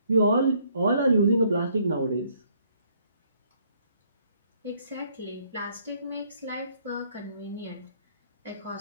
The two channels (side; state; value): both; inverted; correlation -0.67